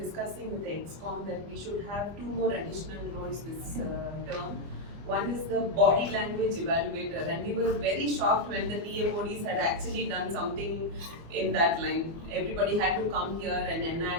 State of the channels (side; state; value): left; late; 24 ms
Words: with the EXCOM that we should have 2 more additional roles this term. One is the body language evaluator, and we were very shocked when the TMODs had actually done something in that line. Everybody had to come here and